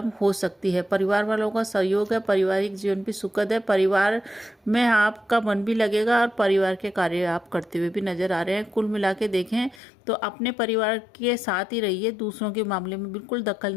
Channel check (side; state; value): right; drops out; at 9.8 s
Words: हो सकती है। परिवार वालों का सहयोग है, पारिवारिक जीवन भी सुखद है, परिवार में आपका मन भी लगेगा और परिवार के कार्य आप करते हुए भी नजर आ रहे हैं। कुल मिला के देखें तो अपने परिवार के साथ ही रहिए, दूसरों के मामले में बिल्कुल दखल